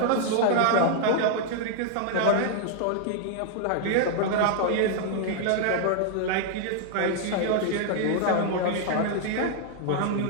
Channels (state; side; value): different; both; correlation 0.00